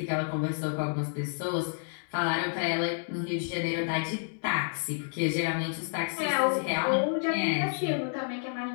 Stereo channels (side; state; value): right; silent; 58 dB below the other